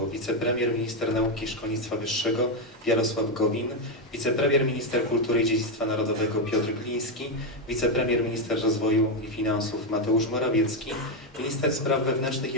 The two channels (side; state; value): both; normal; correlation 0.05